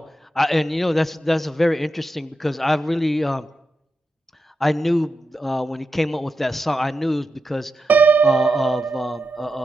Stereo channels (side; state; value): both; normal; correlation 0.88